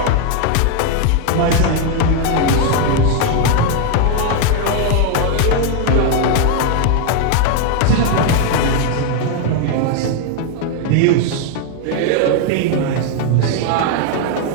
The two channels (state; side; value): different; both; correlation 0.01